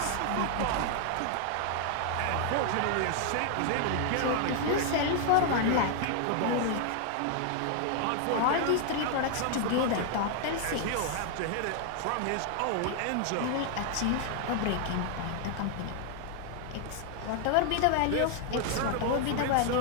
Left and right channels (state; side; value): different; both; correlation 0.00